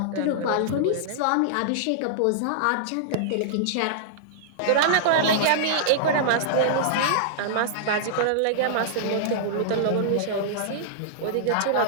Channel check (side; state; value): both; different; correlation -0.02